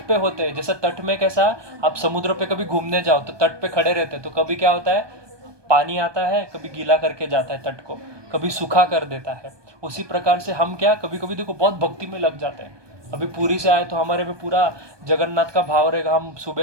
पे होते हैं, जैसे तट में कैसा, आप समुद्र पे कभी घूमने जाओ तो तट पे खड़े रहते हैं, तो कभी क्या होता है, पानी आता है, कभी गीला करके जाता है तट को, कभी सूखा कर देता है। उसी प्रकार से हम क्या, कभी कभी देखो बहुत भक्ति में लग जाते हैं। अभी पुरी से आए तो हमारे में पूरा जगन्नाथ का भाव रहेगा, हम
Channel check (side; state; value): left; late; 1.2 ms